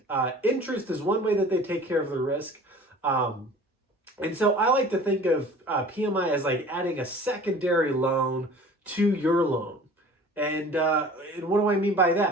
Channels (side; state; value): both; normal; correlation 0.45